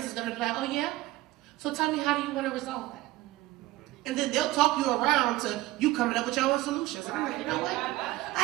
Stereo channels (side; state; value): left; quieter; 18.0 dB